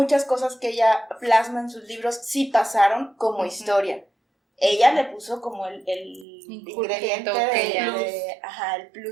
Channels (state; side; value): drops out; left; at 6.2 s